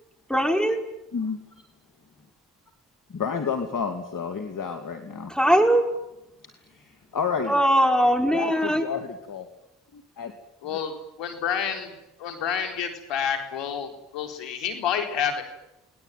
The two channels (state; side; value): normal; both; correlation 0.66